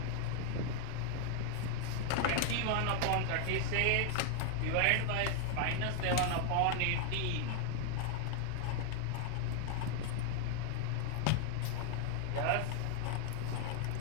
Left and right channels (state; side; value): different; both; correlation 0.00